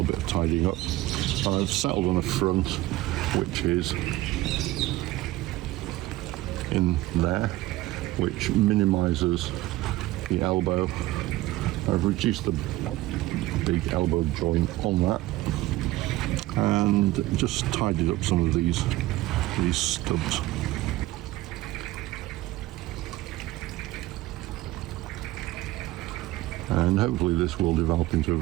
bit of tidying up. I've settled on a front, which is in there, which minimises the elbow. I've reduced the big elbow joint on that and just tidied up some of these stubs. And hopefully this will develop into a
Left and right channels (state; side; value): quieter; left; 17.3 dB